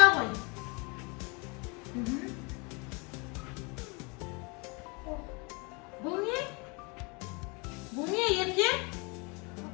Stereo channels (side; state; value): right; quieter; 30.3 dB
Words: ғой. Бұл не? Бұл не, Ерке?